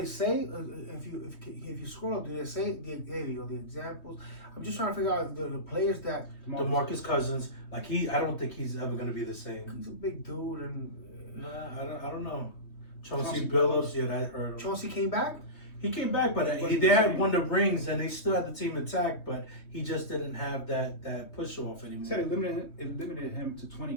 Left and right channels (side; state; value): right; late; 3.2 ms